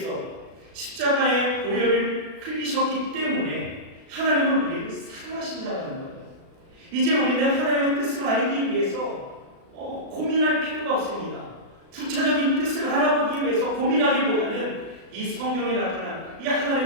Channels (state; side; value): late; left; 36 ms